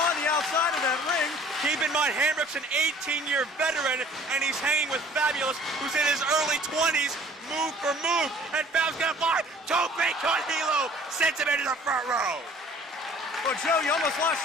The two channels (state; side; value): normal; both; correlation 0.52